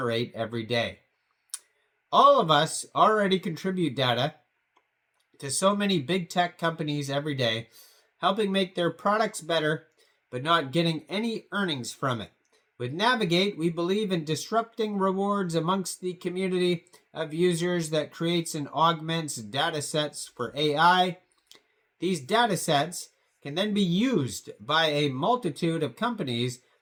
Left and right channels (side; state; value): both; identical; correlation 1.00